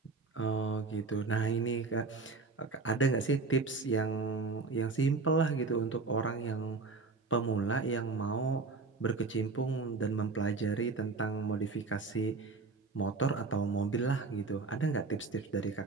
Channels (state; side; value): quieter; left; 4.0 dB